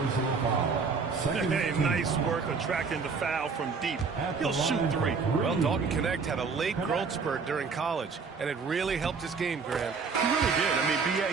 Hey, nice work attracting the foul from deep. He'll shoot 3. Well, Dalton Connect had a late growth spurt during college, and it really helped his game, Grant. He really did. I mean,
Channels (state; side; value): quieter; left; 5.1 dB